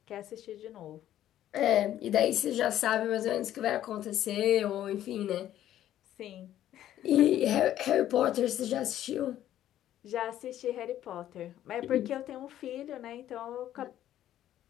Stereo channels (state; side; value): quieter; right; 12.1 dB